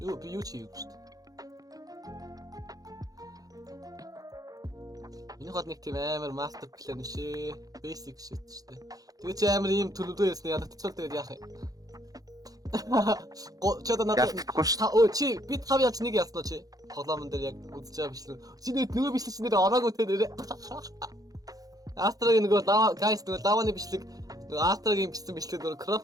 Юу би юу чи юу шүү дээ. Энэ хот нэг тийм амар мастер план шээ. Basic shit шүү дээ. Тэгээ чи амар ийм төлөвлөө ясны ядагдчихвал тэгээд яах юм? Чодо надад Ялтахгүй шүү. Өө чи би тав яаж нэг яснаа чи? Тоглоомн дээр яг үзэж байгаа бичлэн. Чи нөгөө бичлэн нэр ороогүй те нэрэ. Астрагийн нөгөө guys нөгөө лаваны бичлэг нөгөө Астрагийн бичсэн бичлэг нөгөө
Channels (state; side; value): late; left; 0.18 ms